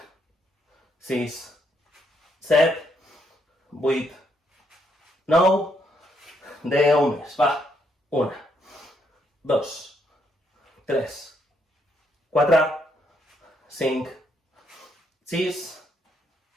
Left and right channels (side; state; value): both; normal; correlation 0.74